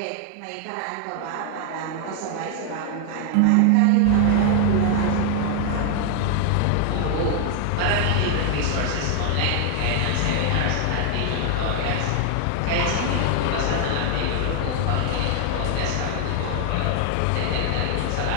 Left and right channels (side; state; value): both; different; correlation 0.00